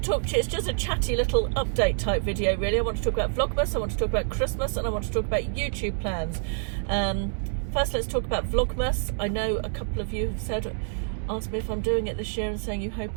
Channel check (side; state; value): left; silent; digital silence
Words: talk to you, it's just a chatty little update type video really. I want to talk about Vlogmas, I want to talk about Christmas, and I want to talk about YouTube plans. First let's talk about Vlogmas. I know a couple of you have asked me if I'm doing it this year and saying you